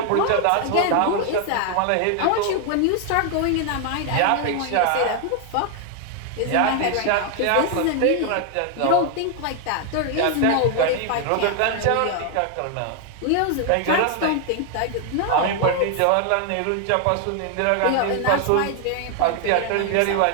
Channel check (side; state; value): both; different; correlation 0.00